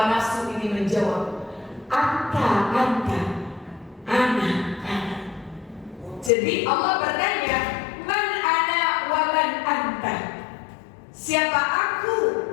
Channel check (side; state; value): right; drops out; at 6.3 s